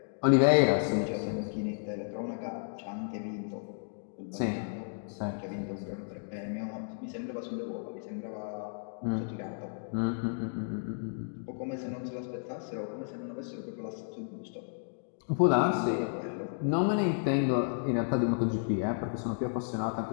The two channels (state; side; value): silent; right; digital silence